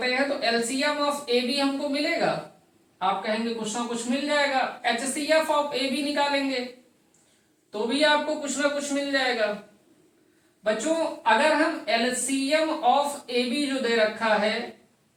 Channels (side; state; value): both; identical; correlation 1.00